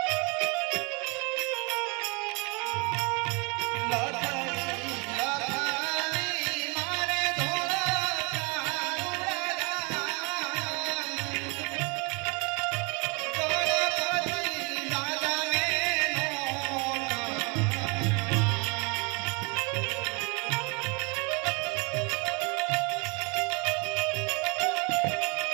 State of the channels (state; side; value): quieter; left; 31.0 dB